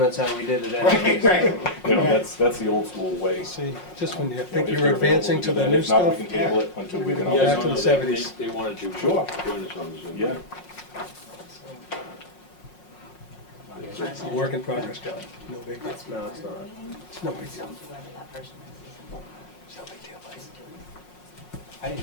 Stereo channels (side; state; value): right; late; 5.5 ms